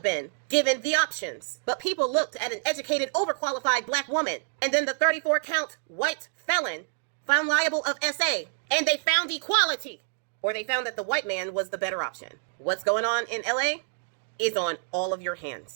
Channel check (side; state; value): left; silent; digital silence